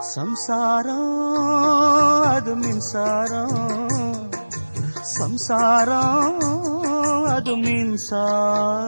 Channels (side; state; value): both; inverted; correlation -1.00